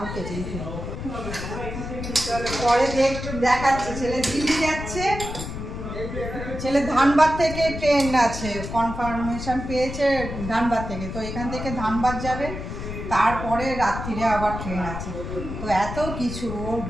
কেচেই ফেলবো। পরে দেখাচ্ছি, ছেলে দিল্লি যাচ্ছে, ছেলে ধানবাদ থেকে ট্রেন আছে, কনফার্মেশন পেয়েছে ধানবাদ থেকে, তো এখান থেকে ধানবাদ যাবে, তারপরে রাত্রিরে আবার ট্রেন আছে। তো এত কিছু, ওর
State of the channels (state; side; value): noise; left; rumble, 7 dB below the sound